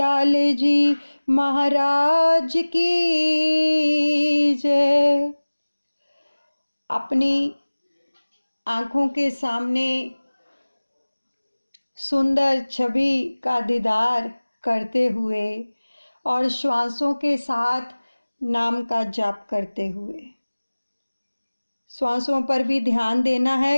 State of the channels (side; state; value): both; inverted; correlation -1.00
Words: जी महाराज की जय। अपनी आँखों के सामने सुंदर छवि का दीदार करते हुए और श्वासों के साथ नाम का जाप करते हुए, श्वासों पर भी ध्यान देना है